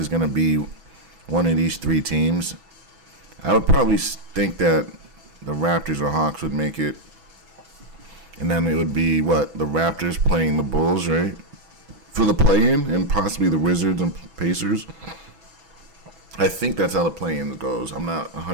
going to be one of these three teams. I would probably think that the Raptors or Hawks would make it. And then it would be what? The Raptors playing the Bulls, right? For the play-in, and possibly the Wizards and Pacers. I think that's how the play-in goes. I'm not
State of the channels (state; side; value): late; left; 6.1 ms